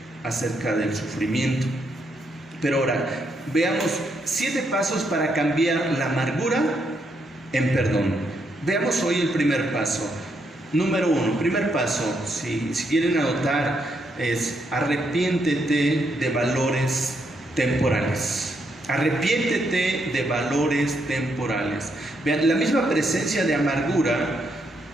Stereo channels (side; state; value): both; normal; correlation 0.78